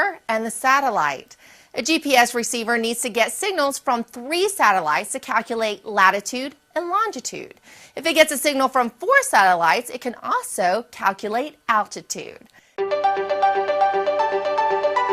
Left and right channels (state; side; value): identical; both; correlation 1.00